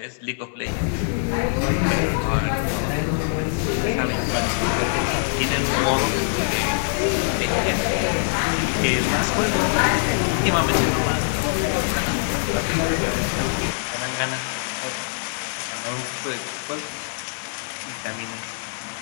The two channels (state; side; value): silent; right; 63 dB below the other